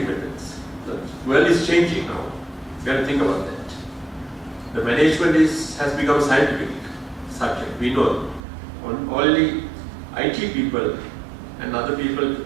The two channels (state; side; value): drops out; left; at 8.4 s